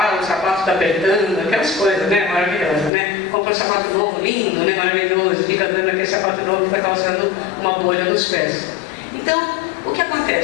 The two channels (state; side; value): drops out; right; at 2.9 s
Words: o sapato está apertando, aquelas coisas, né, maravilhosas, né? Compra um sapato novo, lindo, né, maravilhoso, fica dando aquele sapato novo que vai causando uma bolha nos pés. Então, o que